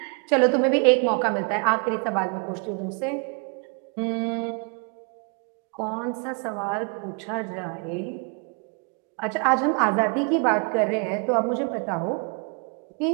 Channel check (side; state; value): left; quieter; 36.7 dB